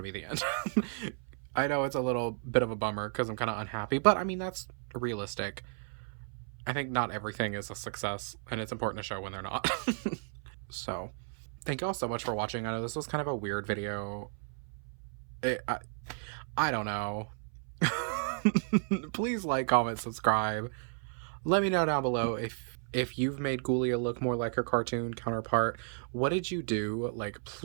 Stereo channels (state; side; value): silent; left; 56 dB below the other